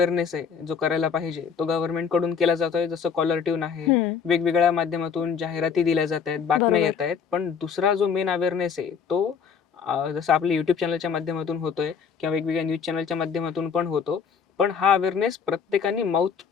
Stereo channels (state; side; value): quieter; right; 6.6 dB